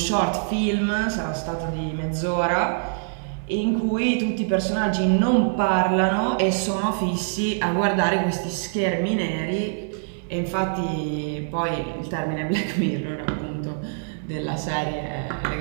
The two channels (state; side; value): silent; left; digital silence